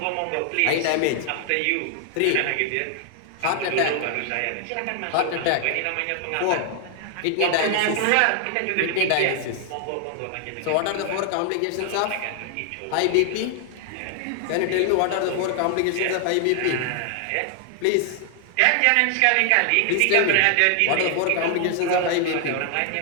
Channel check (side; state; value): both; different; correlation 0.00